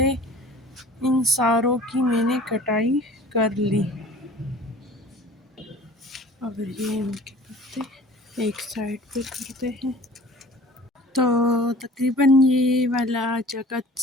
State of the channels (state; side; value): normal; both; correlation 0.45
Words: इन सारों की मैंने कटाई कर ली। और ये इनके पत्ते एक साइड पे करते हैं। तो तकरीबन ये वाला जगह